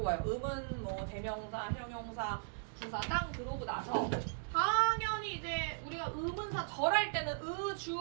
의문, 뭐 대명사, 형용사, 부사 땅 들어오고 나서 당연히 이제 우리가 의문사 절할 때는 의,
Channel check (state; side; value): silent; left; digital silence